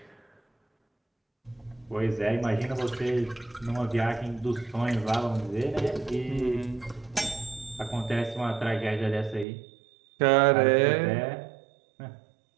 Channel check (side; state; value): left; drops out; at 9.5 s